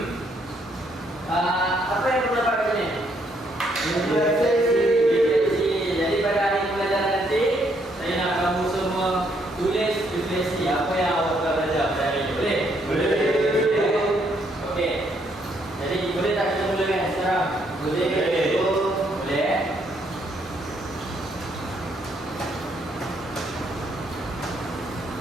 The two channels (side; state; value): both; normal; correlation 0.71